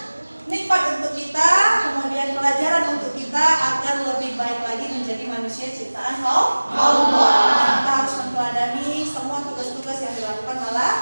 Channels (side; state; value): both; inverted; correlation -1.00